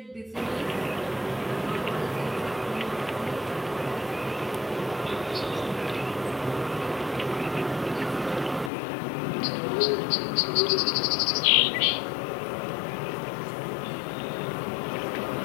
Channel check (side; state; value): right; drops out; at 8.7 s